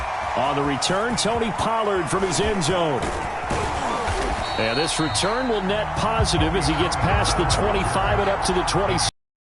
On the return, Tony Pollard from his end zone. And this return will net positive as he gets past the 25 and up to the 26.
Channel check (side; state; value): both; identical; correlation 1.00